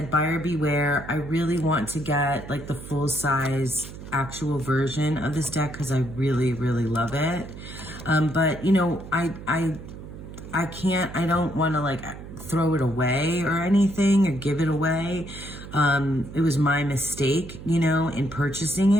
buyer beware. I really want to get like the full size actual version of this deck because I really, really love it. But I don't want to like throw it away or anything or give it away. It was my mistake, in purchasing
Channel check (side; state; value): right; noise; hum, 13 dB below the sound